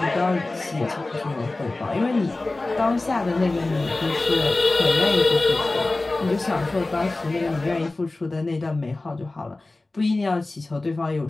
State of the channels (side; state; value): right; quieter; 3.1 dB